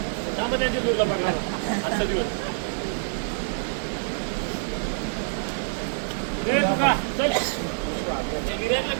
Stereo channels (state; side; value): silent; left; digital silence